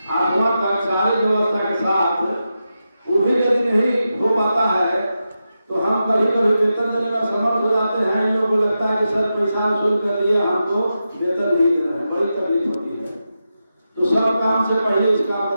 8वां तक सारी व्यवस्था के साथ, वो भी यदि नहीं हो पाता है तो हम कभी कभी वेतन देने में समर्थ हो जाते हैं। इन लोगों को लगता है कि सर पैसा वसूल कर दिए, हमको वेतन नहीं दे रहे हैं, बड़ी तकलीफ होती है। तो सब काम से पहले इस काम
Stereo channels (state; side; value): inverted; both; correlation -0.89